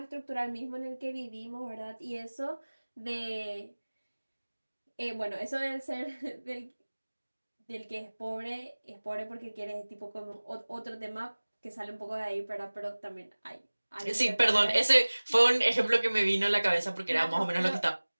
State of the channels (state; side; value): inverted; both; correlation -1.00